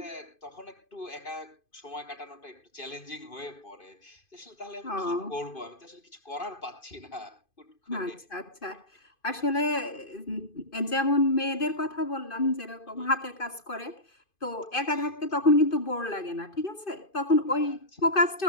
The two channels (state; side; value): late; right; 2.5 ms